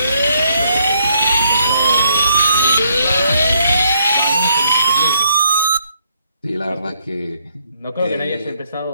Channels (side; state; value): both; inverted; correlation -0.72